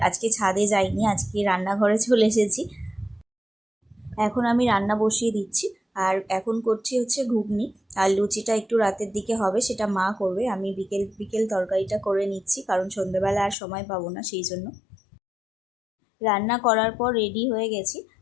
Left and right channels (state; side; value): drops out; right; at 13.6 s